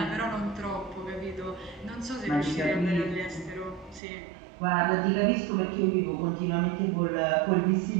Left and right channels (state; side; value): drops out; left; at 4.0 s